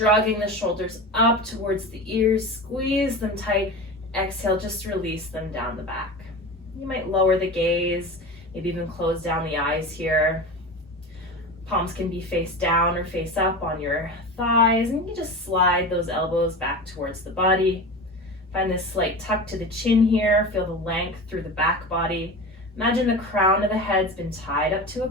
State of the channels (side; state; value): both; normal; correlation 0.29